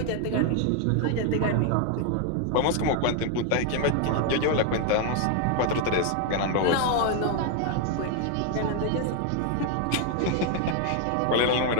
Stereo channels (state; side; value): different; both; correlation 0.00